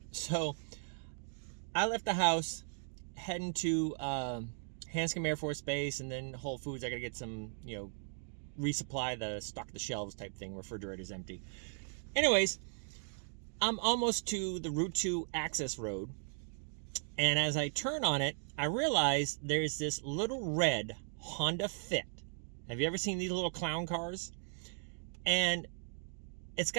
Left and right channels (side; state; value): left; silent; 53 dB below the other